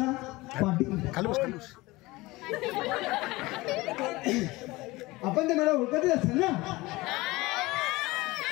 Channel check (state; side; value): quieter; right; 20.9 dB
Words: पाटील. आपण ते मला ओळखतच असेल ना?